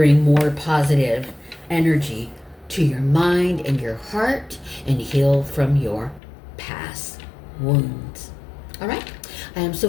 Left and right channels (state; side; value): drops out; right; at 6.2 s